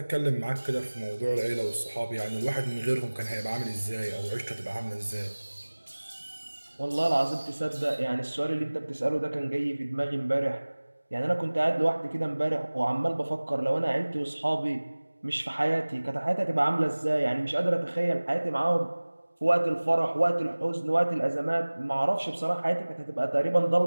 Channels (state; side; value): inverted; both; correlation -1.00